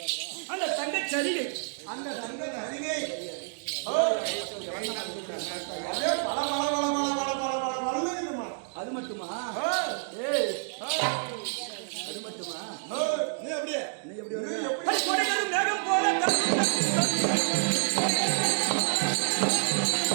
அந்த தங்கச் சரிகை, அந்த தங்க அருகே அதே பல பல பல பல பல பல பல பல்லுமா. அது மட்டுமா? ஏய், அது மட்டுமா? நீ அப்படியே நீ எப்படி நீ வருவ? எப்படி அடி கொடைகளும் மேகம் போல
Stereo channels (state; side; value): silent; left; digital silence